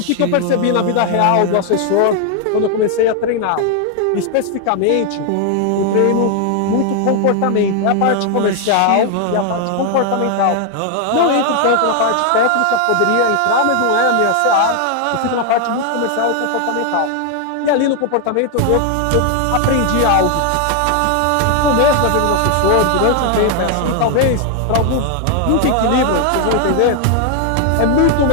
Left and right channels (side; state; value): both; different; correlation 0.00